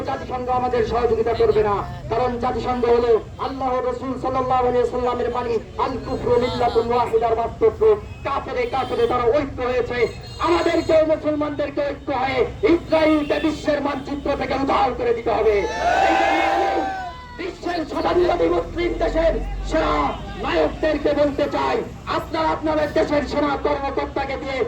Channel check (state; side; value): identical; both; correlation 1.00